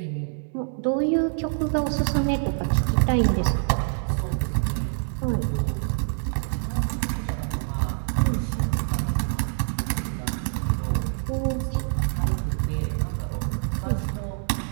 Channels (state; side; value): silent; left; 61 dB below the other